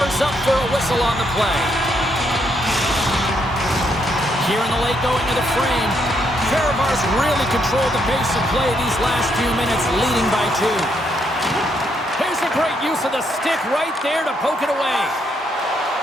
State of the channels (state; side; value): normal; both; correlation 0.75